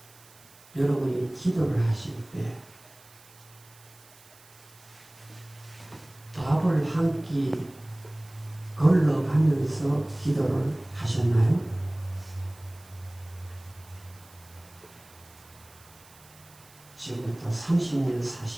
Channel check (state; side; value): noise; right; hiss, 25 dB below the sound